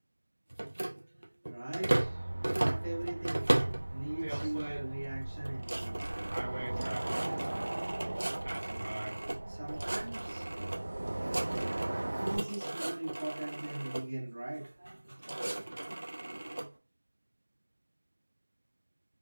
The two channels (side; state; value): both; inverted; correlation -1.00